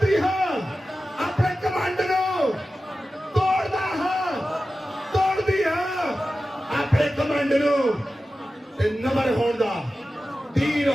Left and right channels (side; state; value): both; normal; correlation 0.94